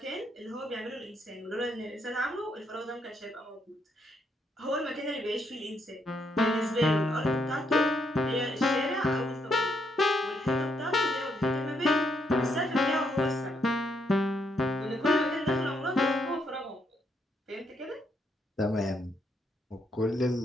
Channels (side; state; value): both; normal; correlation 0.75